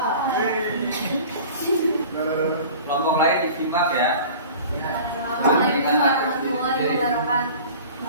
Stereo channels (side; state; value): both; inverted; correlation -0.42